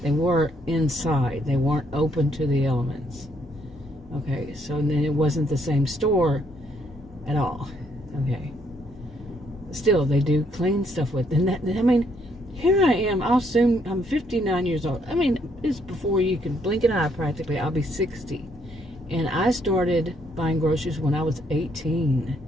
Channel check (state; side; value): normal; both; correlation 0.70